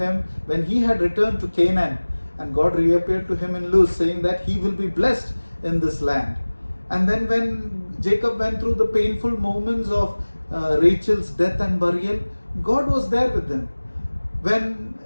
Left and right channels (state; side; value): inverted; both; correlation -1.00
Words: when he had returned to Canaan, and God reappeared to him in Luz, saying that he will be blessed in this land. And then when Jacob went through the painful moments of Rachel's death and burial, God was there with him. When